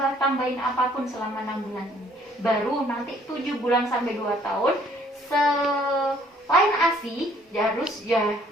apapun selama 6 bulan ini. Baru nanti 7 bulan sampai 2 tahun selain ASI harus ya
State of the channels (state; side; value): normal; both; correlation 0.61